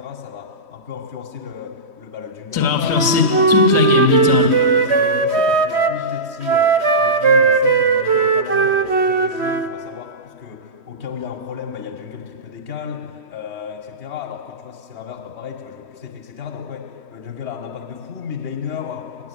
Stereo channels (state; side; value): late; left; 3.1 ms